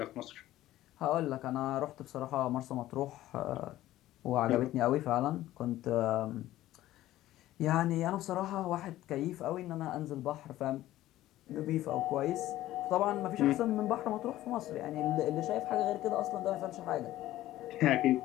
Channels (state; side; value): quieter; right; 14.8 dB